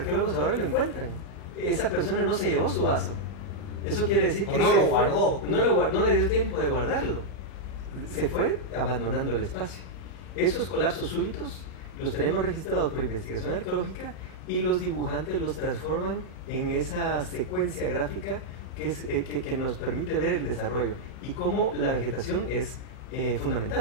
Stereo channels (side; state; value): right; late; 31 ms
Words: ahora y lo encuentran. Esa persona no se llevó su vaso. Eso quiere decir que no lo guardó. No le dio tiempo de guardarlo. Se fue abandonando el espacio. Esos colapsos súbitos los tenemos registrados por investigación arqueológica, y los dibujantes los transforman en esa secuencia gráfica que nos permite ver el desarrollo y cómo la vegetación es